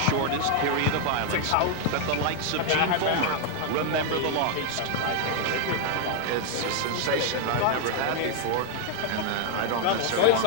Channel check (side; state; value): both; different; correlation 0.00